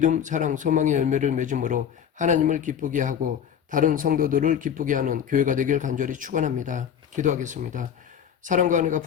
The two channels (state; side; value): quieter; right; 8.5 dB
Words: 사랑, 소망의 열매를 맺음으로 하나님을 기쁘게 하고 다른 성도들을 기쁘게 하는 교회가 되길 간절히 축원합니다. 기도하겠습니다. 사랑과 은혜가